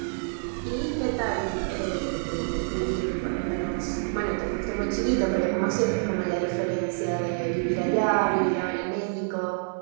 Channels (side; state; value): left; silent; 60 dB below the other